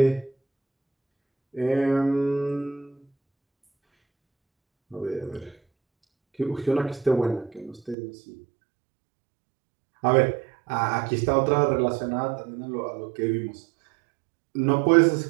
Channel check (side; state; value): left; drops out; at 8.0 s